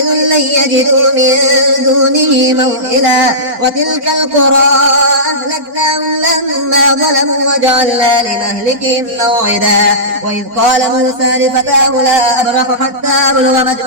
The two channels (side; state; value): left; late; 4.5 ms